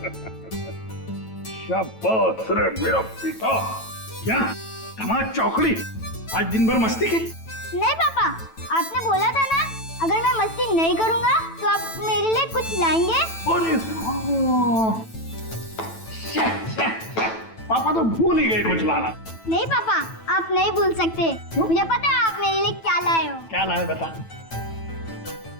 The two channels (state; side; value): late; right; 9.1 ms